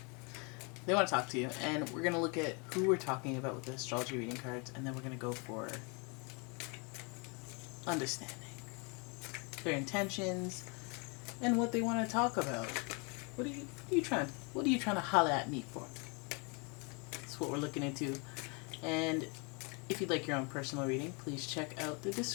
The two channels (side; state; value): right; quieter; 33.0 dB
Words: They want to talk to you, and we're going to look at who we're talking about with the astrology reading cards, and then we're going to go for understanding their intentions and what they want to talk about. What are you trying to holler at me for? That's what we're looking into. And if you'd like your own personal reading, please check out the